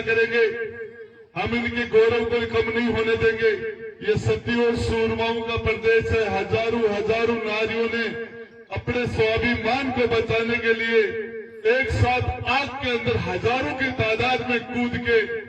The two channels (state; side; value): identical; both; correlation 1.00